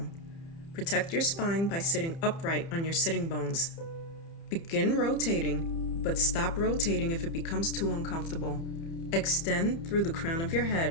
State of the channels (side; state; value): right; late; 30 ms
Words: Protect your spine by sitting upright on your sitting bones. Begin rotating, but stop rotating if it becomes too uncomfortable. Extend through the crown of your